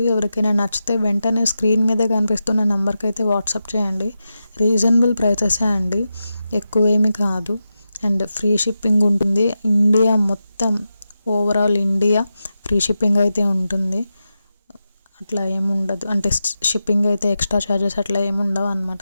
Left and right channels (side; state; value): both; inverted; correlation -0.90